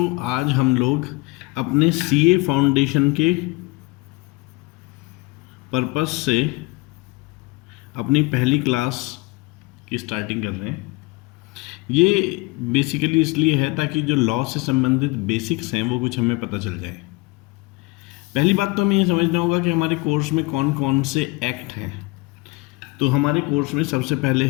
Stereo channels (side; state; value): right; quieter; 24.4 dB